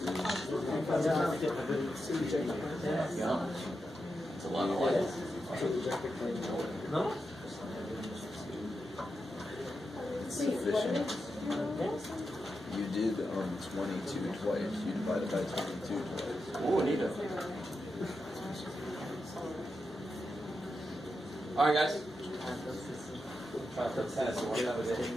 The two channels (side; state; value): both; normal; correlation 0.88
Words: It's a lot of light. No? It's sufficient. You did 22 twice. You divided by 22 twice. Oh, neat. Alright, guys. Try to put tennis away.